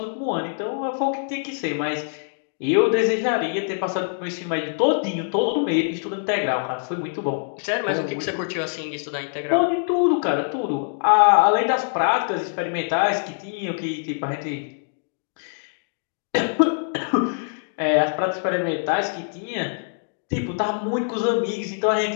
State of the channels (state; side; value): silent; right; digital silence